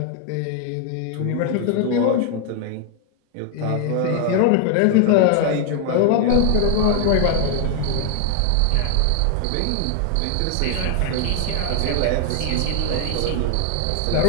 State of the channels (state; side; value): different; both; correlation 0.00